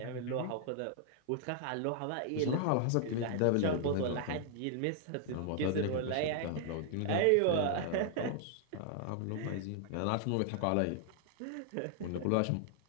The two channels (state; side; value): different; both; correlation 0.00